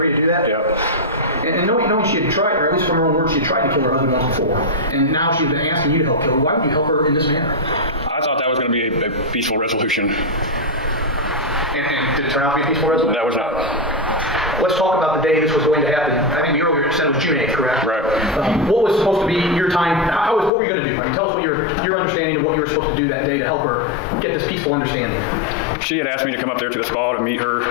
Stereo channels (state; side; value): drops out; right; at 20.5 s